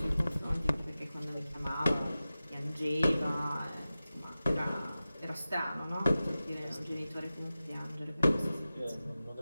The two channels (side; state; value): both; inverted; correlation -0.95